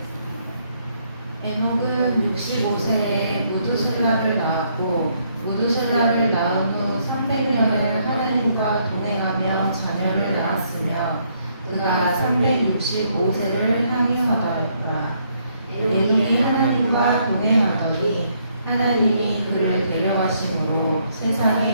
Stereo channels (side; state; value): both; inverted; correlation -0.71